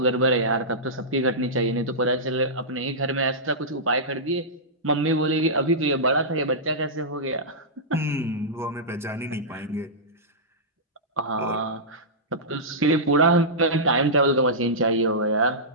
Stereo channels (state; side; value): normal; both; correlation -0.15